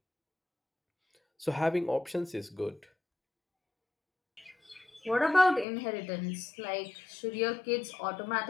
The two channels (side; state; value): right; drops out; at 5.7 s